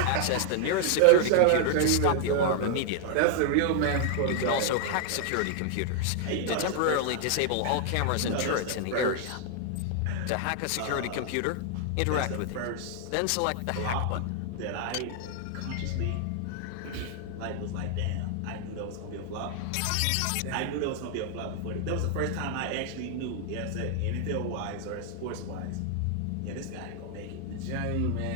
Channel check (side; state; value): both; different; correlation 0.00